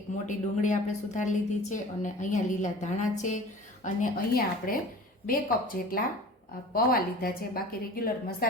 મોટી ડુંગળી આપણે સુધારી લીધી છે, અને અહીંયા લીલા ધાણા છે, અને અહીંયા આપણે 2 કપ જેટલા પૌવા લીધા છે। બાકી રેગ્યુલર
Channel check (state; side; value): normal; both; correlation 0.41